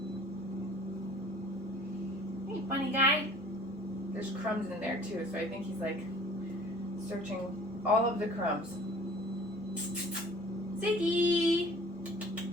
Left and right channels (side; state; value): both; normal; correlation 0.50